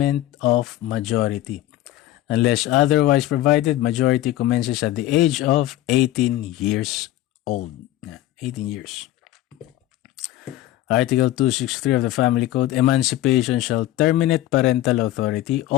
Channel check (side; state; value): right; quieter; 14.5 dB